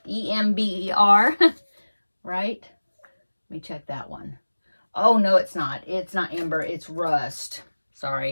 E-M-B-E-R, right? Let me check that one. Oh, no, it's not. It's not Ember, it's Rust.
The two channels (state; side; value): inverted; both; correlation -1.00